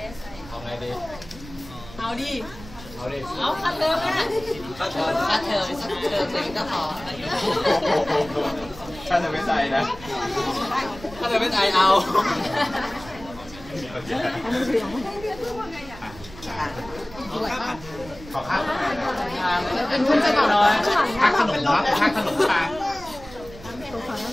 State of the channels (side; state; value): right; noise; rumble, 17 dB below the sound